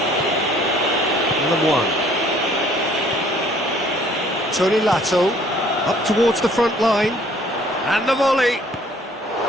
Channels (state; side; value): normal; both; correlation 0.58